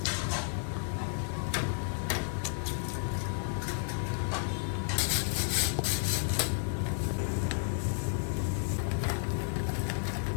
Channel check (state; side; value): silent; right; 56 dB below the other